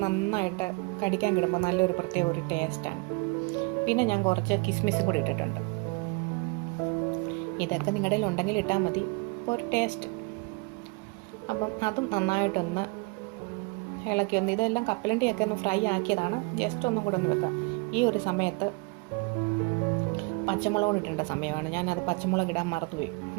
നന്നായിട്ട് കടിക്കാൻ കിടുമ്പോൾ നല്ലൊരു പ്രത്യേക ഒരു ടേസ്റ്റാണ്. പിന്നെ ഞാൻ കുറച്ച് കിസ്മിസും കൂടി ഇട്ടിട്ടുണ്ട്. ഇതൊക്കെ നിങ്ങളുടെ കയ്യിൽ ഉണ്ടെങ്കിൽ ഇട്ടാൽ മതി, അപ്പോൾ ഒരു ടേസ്റ്റ്. അപ്പം അതും നന്നായിട്ടൊന്ന് ഇളക്കി ഒന്ന് ഇതെല്ലാം കപ്പലണ്ടിയൊക്കെ ഒന്ന് ഫ്രൈ ആക്കിയതാണ്. ജസ്റ്റ് ഒന്നും കൂടെ ഒന്ന് വെക്കാം. ഈ ഒരു സമയത്ത് പച്ചമുളക് ഇടേണ്ട സമയമാണ്. ഞാനത് പച്ചമുളക് ഇടാൻ മറന്നുപോയി.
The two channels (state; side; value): quieter; left; 29.7 dB